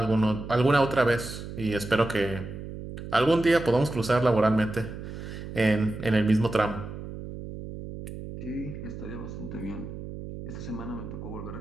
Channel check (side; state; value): right; noise; hum, 10 dB below the sound